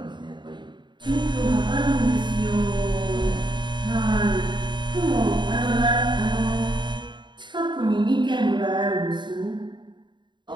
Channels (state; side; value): late; left; 0.22 ms